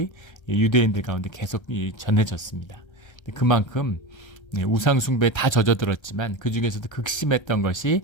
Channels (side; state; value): right; late; 1.3 ms